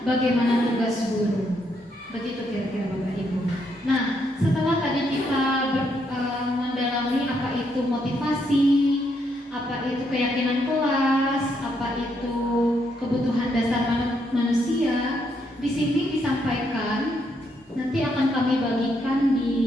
bagaimana tugas guru. Begitu kira-kira Bapak Ibu. Nah, setelah tadi kita mendalami apa itu motivasi, apa itu keyakinan kelas, apa itu kebutuhan dasar manusia, di sini disampaikan, nanti akan kami bagikan di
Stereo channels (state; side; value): normal; both; correlation 0.76